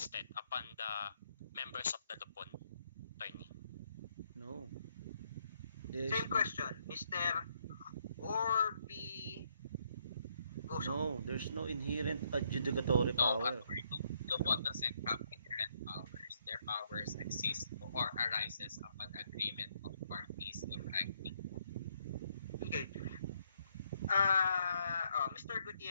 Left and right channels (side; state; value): both; inverted; correlation -0.73